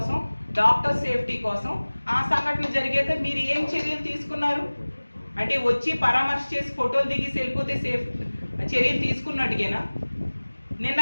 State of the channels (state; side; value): inverted; both; correlation -1.00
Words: డాక్టర్ సేఫ్టీ కోసం ఆ సంఘటన జరిగాక మీరు ఏం చర్యలు తీసుకున్నారు? అంటే వచ్చి పరామర్శ చేసి ఫోటోలు దిగి వెళ్ళిపోతే చర్యలు తీసుకున్నట్టుగేనా? నిన్న